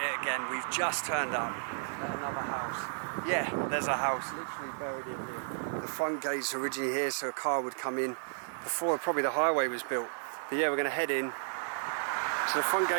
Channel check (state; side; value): silent; left; digital silence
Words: it again. We've just turned up at another house. Yeah, there's a house literally buried in here. The front gate's originally here so a car would come in before probably the highway was built. But yeah, we're going to head in. So the front